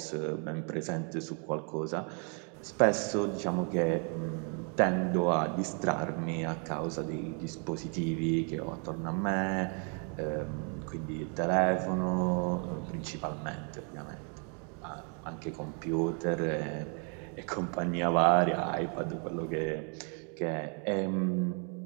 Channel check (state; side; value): quieter; left; 39.3 dB